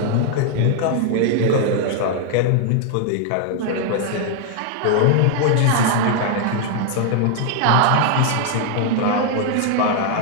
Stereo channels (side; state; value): both; different; correlation 0.00